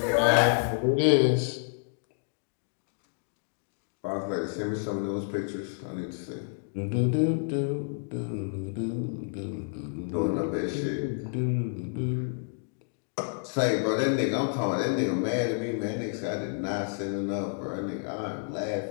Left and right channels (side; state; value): right; silent; digital silence